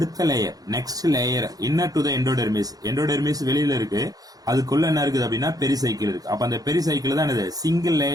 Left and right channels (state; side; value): late; left; 0.18 ms